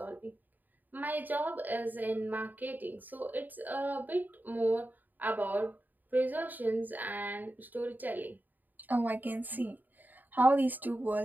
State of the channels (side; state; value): left; late; 0.087 ms